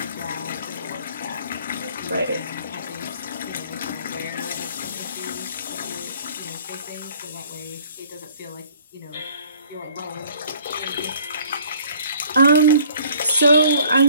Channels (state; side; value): inverted; both; correlation -0.55